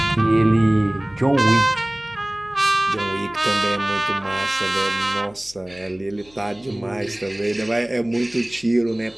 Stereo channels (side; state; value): left; noise; hum, 26 dB below the sound